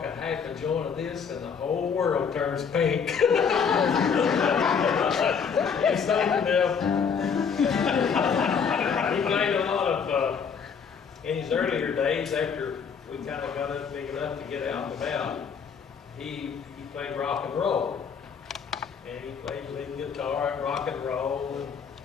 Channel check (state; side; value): quieter; right; 6.4 dB